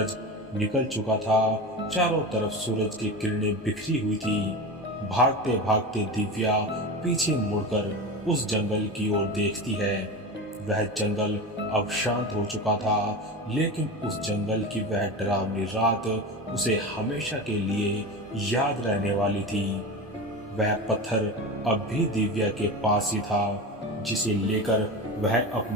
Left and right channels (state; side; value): normal; both; correlation 0.26